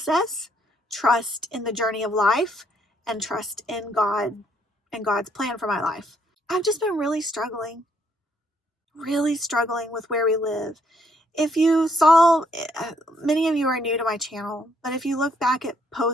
trust in the journey of life, and trust in God and God's plan for my life. I've just been really struggling with where we live. If you saw, many of you are new to my channel, but if you look back at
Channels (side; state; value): both; normal; correlation 0.70